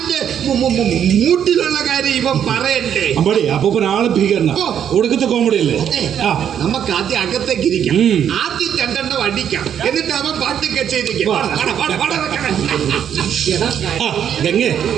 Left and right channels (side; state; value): left; quieter; 9.1 dB